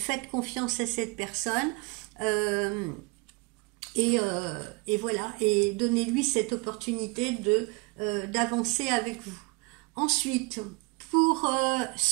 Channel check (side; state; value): left; quieter; 27.6 dB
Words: confiance à cette personne et voilà, et donnez-lui cette opportunité d'avancer avec vous. Ensuite, pour